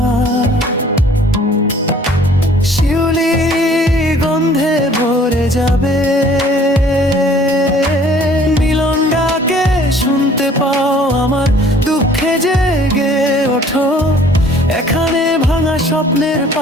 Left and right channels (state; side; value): normal; both; correlation 0.54